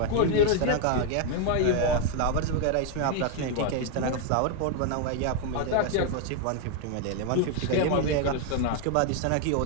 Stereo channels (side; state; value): both; different; correlation 0.00